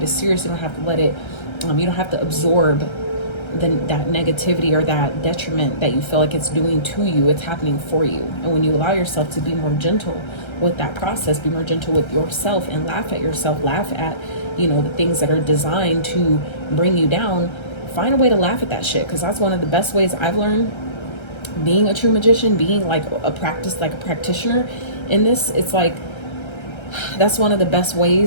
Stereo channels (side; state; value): right; late; 1.3 ms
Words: as serious. You don't have to let it, you don't have to absorb that negativity or that detriment that you feel like it's doing to you. It's happening for you. And when you allow yourself to be more gentle with that process, be more gentle with yourself and laugh at yourself, laugh at, you know, the things that are designed to bring you down, find a way to laugh at that shit. Because that's one of the best ways I've learned being a true magician, being like a practitioner in this. It's like, that's one of the best